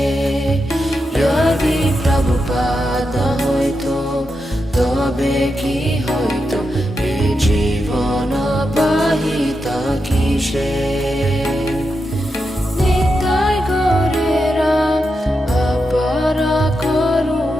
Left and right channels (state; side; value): normal; both; correlation 0.87